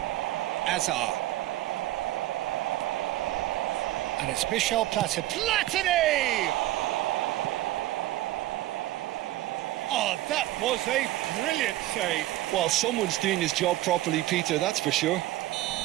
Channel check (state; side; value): quieter; left; 15.7 dB